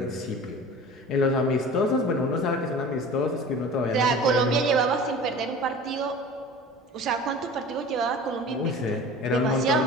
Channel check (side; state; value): both; normal; correlation 0.40